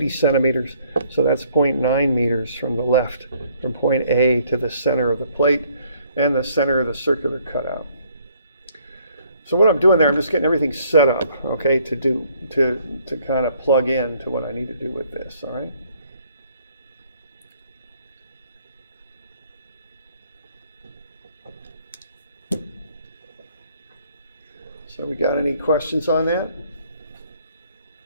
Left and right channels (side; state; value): both; inverted; correlation -0.64